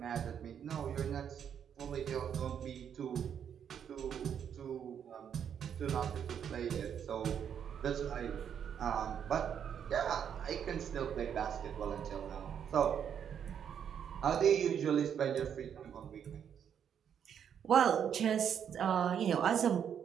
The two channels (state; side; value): quieter; left; 8.4 dB